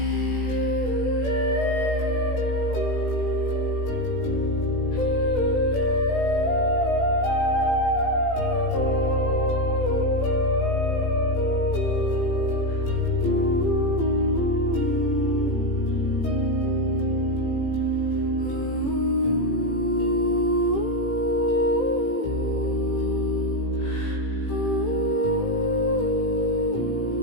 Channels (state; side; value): late; right; 18 ms